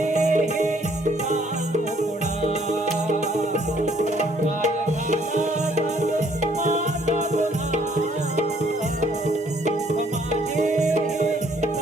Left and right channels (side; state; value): both; normal; correlation 0.63